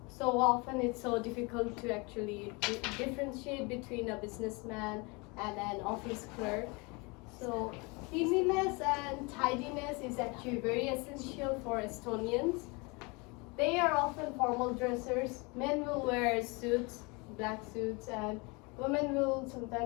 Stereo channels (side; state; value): right; quieter; 28.3 dB